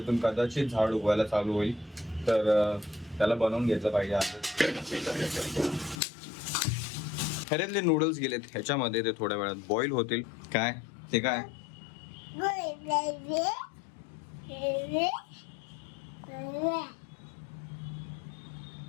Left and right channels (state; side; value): drops out; right; at 6.0 s